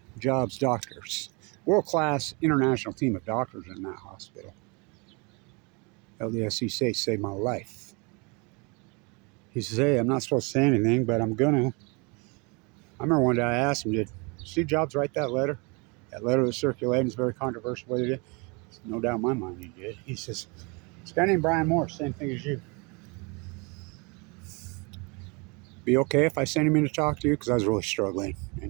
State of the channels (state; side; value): quieter; left; 30.1 dB